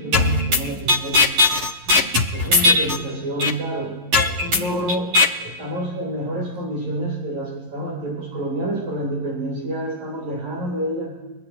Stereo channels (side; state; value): left; late; 11 ms